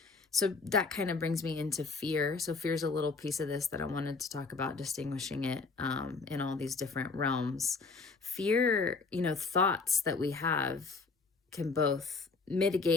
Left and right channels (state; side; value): quieter; right; 4.3 dB